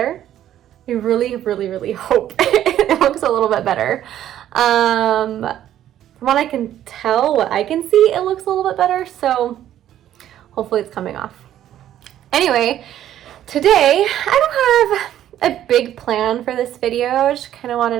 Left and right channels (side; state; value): left; quieter; 11.7 dB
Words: I really hope it looks a little bit better. From what I can tell, what I can see, it looks a little bit better, so hopefully it's coming off. Anyway, today I don't have a big plan for this video. I just kind of wanted